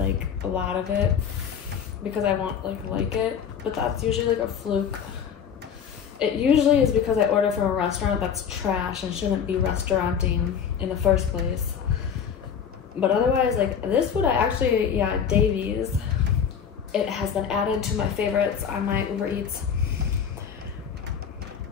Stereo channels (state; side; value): quieter; right; 7.6 dB